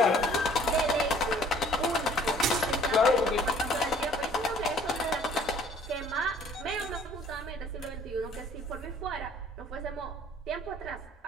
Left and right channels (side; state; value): both; normal; correlation 0.56